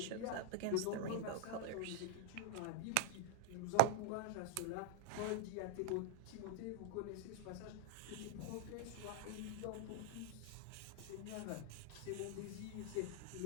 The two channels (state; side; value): different; both; correlation 0.00